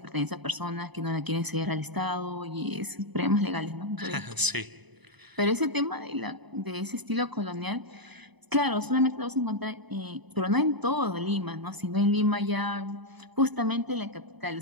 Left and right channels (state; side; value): late; left; 0.99 ms